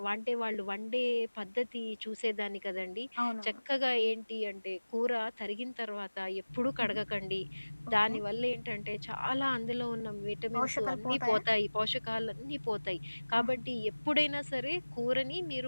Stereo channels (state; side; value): inverted; both; correlation -1.00